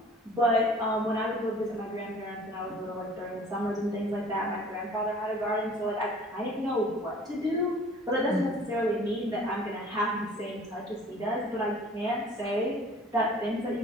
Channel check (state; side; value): normal; both; correlation 0.49